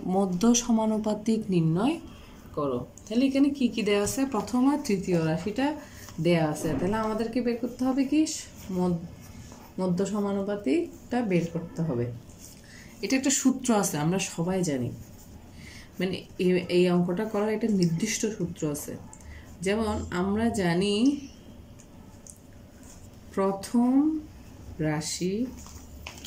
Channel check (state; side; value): identical; both; correlation 1.00